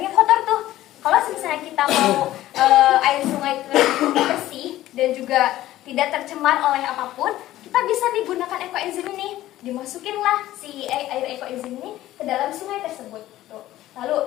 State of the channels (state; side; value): quieter; right; 14.7 dB